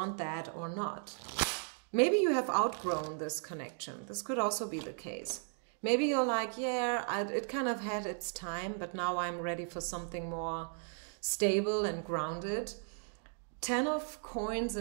that or not. Maybe you have outgrown this connection. This could also be the case. Maybe you're like, yeah, it kind of had its time, but now I'm ready for something more stable and grounded. 10 of coins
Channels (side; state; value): left; silent; 54 dB below the other